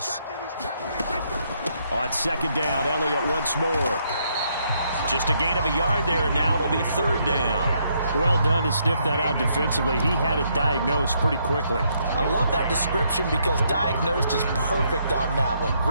On second down, Elliott once more. Just a gain of a yard there, and now it'll be third down. Well done to sniff that out defensively. He had it diagnosed pretty quickly. I love that description because diagnosed is perfect on that one.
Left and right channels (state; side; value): inverted; both; correlation -0.73